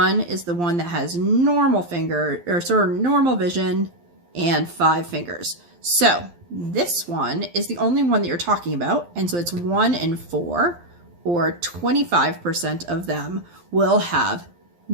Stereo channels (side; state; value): left; late; 12 ms